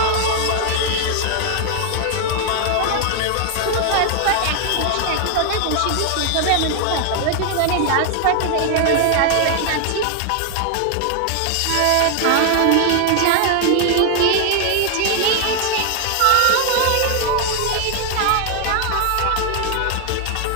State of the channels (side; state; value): both; different; correlation 0.00